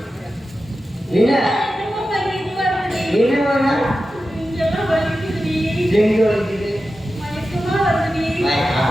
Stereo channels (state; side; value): normal; both; correlation 0.92